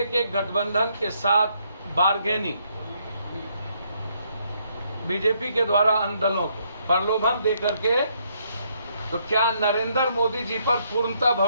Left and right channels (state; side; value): inverted; both; correlation -0.72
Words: के गठबंधन के साथ बार्गेनिंग बीजेपी के द्वारा अन्य दलों को प्रलोभन देकर के, तो क्या नरेंद्र मोदी जी पर पूर्णतः